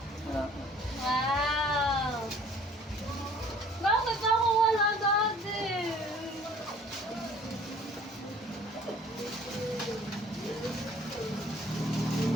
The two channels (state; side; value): normal; both; correlation 0.53